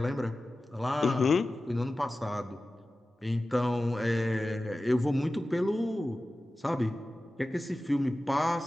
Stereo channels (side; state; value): both; normal; correlation 0.95